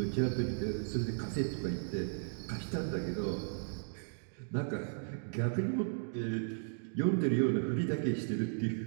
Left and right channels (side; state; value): left; silent; digital silence